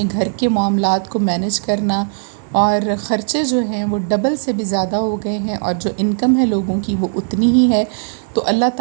گھر کے معاملات کو مینج کرنا، اور خرچے جو ہیں وہ ڈبل سے بھی زیادہ ہو گئے ہیں، اور جو انکم ہے لوگوں کی وہ اتنی ہی ہے۔ تو اللہ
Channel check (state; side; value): silent; left; digital silence